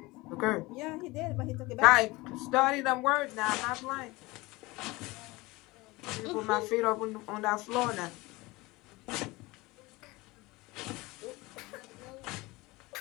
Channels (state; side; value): quieter; right; 22.1 dB